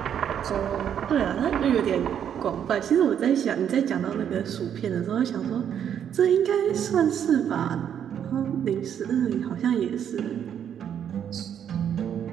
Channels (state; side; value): quieter; left; 9.0 dB